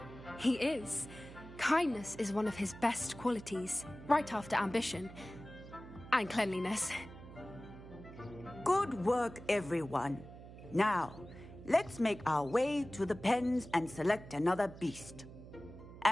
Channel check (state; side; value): noise; right; hum, 15 dB below the sound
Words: He is. Kindness is one of his best qualities, right after ambition. And cleanliness. Good work, everyone. Now, let's make our way to the pens and select another beast.